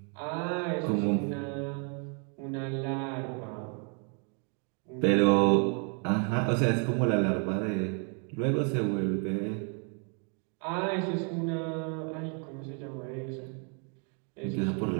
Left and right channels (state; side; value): quieter; left; 39.0 dB